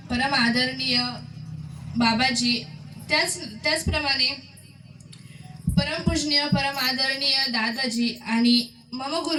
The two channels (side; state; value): both; identical; correlation 1.00